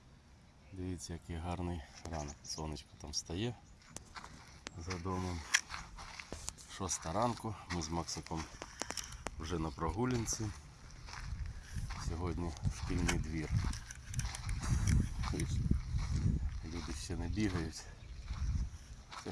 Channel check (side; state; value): both; identical; correlation 1.00